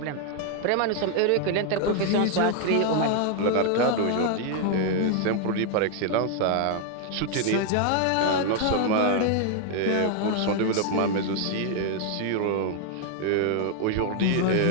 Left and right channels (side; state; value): both; different; correlation 0.00